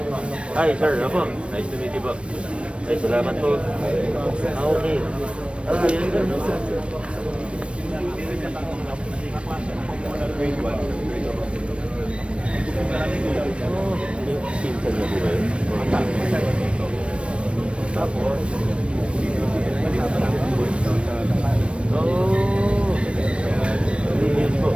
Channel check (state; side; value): late; left; 0.059 ms